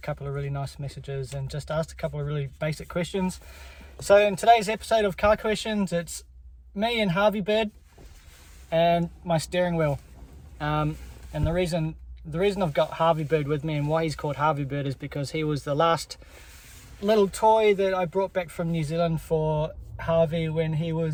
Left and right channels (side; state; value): both; identical; correlation 1.00